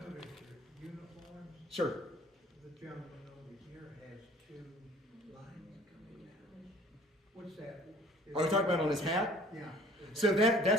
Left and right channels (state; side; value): normal; both; correlation 0.52